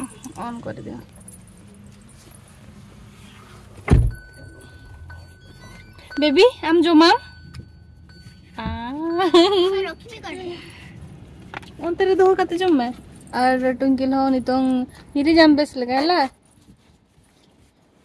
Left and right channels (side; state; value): both; identical; correlation 1.00